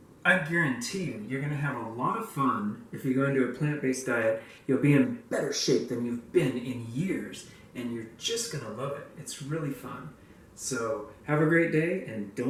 I guarantee you're going to have a lot of fun if you go into a plant-based diet. You'll be in better shape than you've been in years, and you're just going to love it. It's really fun. So have a great day, and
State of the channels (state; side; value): identical; both; correlation 1.00